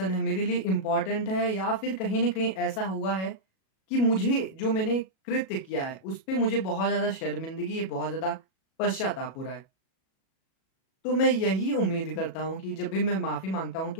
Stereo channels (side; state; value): right; late; 37 ms